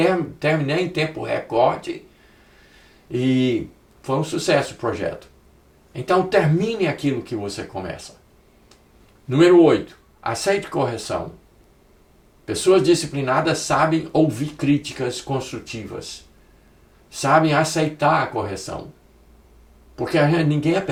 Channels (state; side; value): identical; both; correlation 1.00